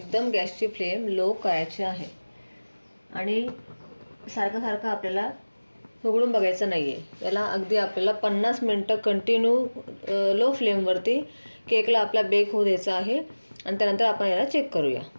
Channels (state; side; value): inverted; both; correlation -1.00